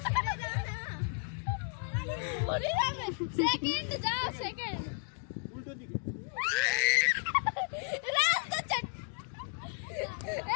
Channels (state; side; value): silent; right; 55 dB below the other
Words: सेकंड जाओ, सेकंड উল্টো দিকে। रास्ता चट